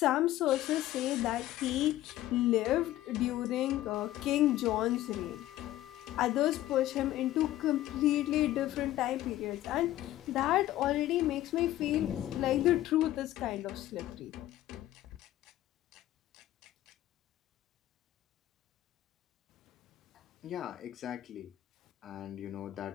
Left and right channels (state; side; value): quieter; right; 14.4 dB